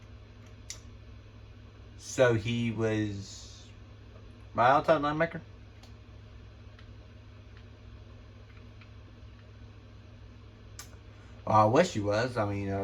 So he was my outside linebacker. I wish he was. I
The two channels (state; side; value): identical; both; correlation 1.00